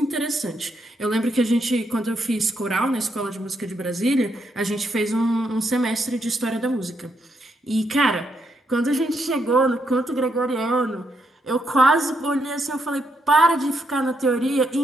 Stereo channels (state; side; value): normal; both; correlation 0.78